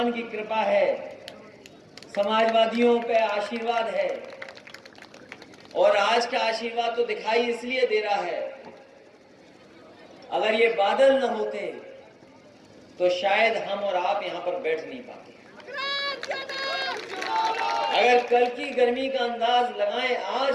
की कृपा है, समाजवादियों पे आशीर्वाद है और आज का आशीर्वाद तो दिखाई इसलिए दे रहा है, अगर ये बादल न होते तो शायद हम और आप यहां पर बैठ नहीं पाते। अगर कल की गर्मी का अंदाज लगाएं आज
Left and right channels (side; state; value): both; identical; correlation 1.00